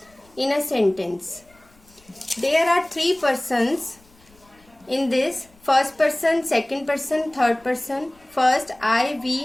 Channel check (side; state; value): left; noise; rumble, 30 dB below the sound